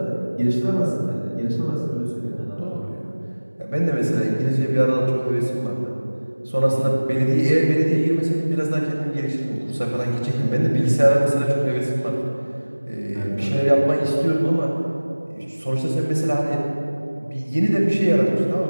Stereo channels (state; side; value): inverted; both; correlation -1.00